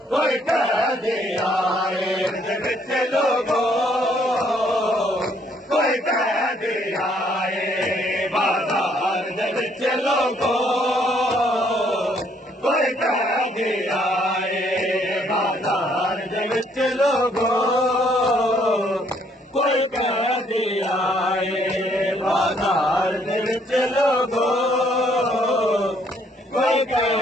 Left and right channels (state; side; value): normal; both; correlation 0.67